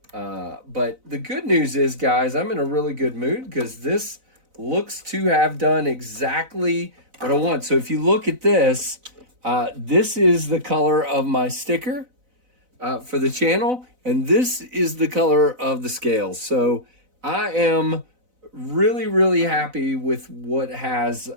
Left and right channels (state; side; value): late; left; 4.0 ms